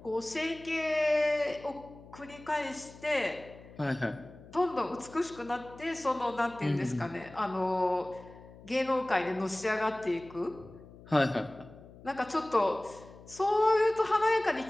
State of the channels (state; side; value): noise; left; hum, 20 dB below the sound